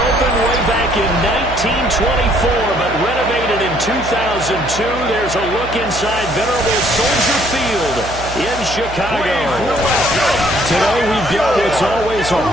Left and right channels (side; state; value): right; noise; hum, 11 dB below the sound